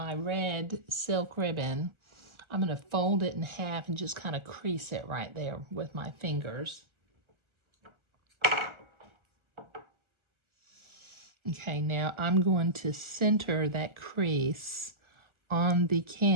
red silk ribbon. I'm going to fold it in half and just kind of crease it right there with my fingers. Okay, now I'm going to center that crease on the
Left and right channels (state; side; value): late; left; 1.3 ms